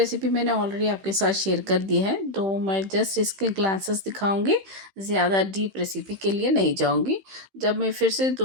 मैंने ऑलरेडी आपके साथ शेयर कर दी है। तो मैं जस्ट इसके ग्लासेस दिखाऊंगी, ज़्यादा डीप रेसिपी के लिए नहीं जाऊंगी। जब मैं फिर से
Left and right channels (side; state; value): left; late; 15 ms